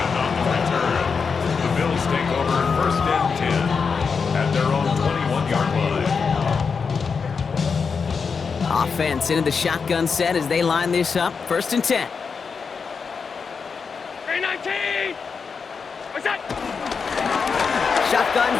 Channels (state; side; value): quieter; right; 5.5 dB